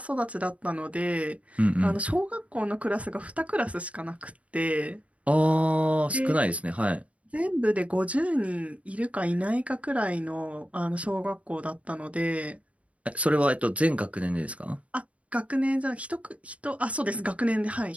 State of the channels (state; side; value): late; left; 0.066 ms